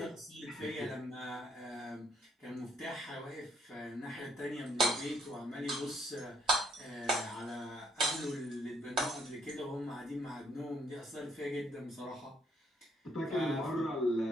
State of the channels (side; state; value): both; normal; correlation 0.70